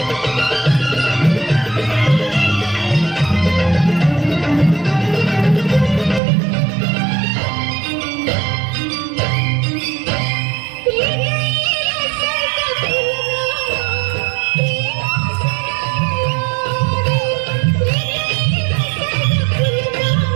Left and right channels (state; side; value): drops out; left; at 6.2 s